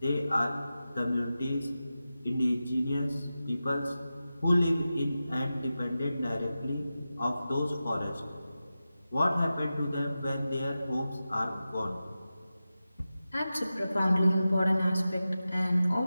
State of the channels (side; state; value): both; inverted; correlation -0.93